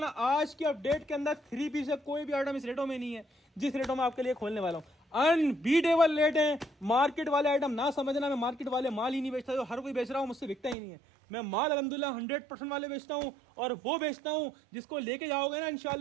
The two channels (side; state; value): left; drops out; at 10.8 s